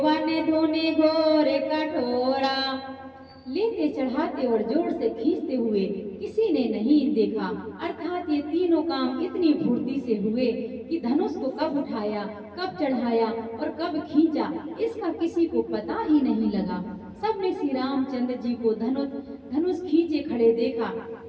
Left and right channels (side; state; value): both; identical; correlation 1.00